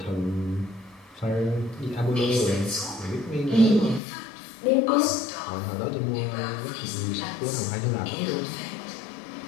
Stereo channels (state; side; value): drops out; right; at 4.0 s